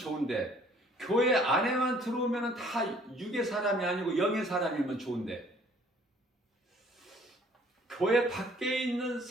교회 안에만 들어오면 다 육의 사람이 아니고 영의 사람이면 좋은데 교회 밖에 있는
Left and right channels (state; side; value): normal; both; correlation 0.58